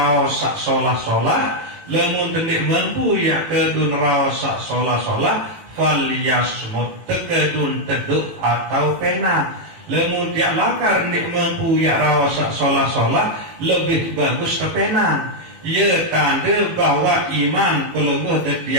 sak solah-solah, lamun tendik mampu ya kedu neraos sak solah-solah falyasmut, tekedun teduk atau pena. Lamun tiak lakar ndik mampu ya raos sak solah-solah, lebih bagus ke pena. Ia tanda bahwa iman pelungguh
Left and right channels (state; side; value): late; left; 18 ms